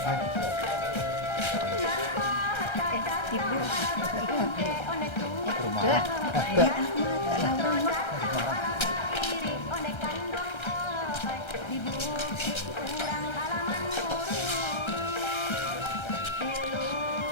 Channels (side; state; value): right; late; 1.3 ms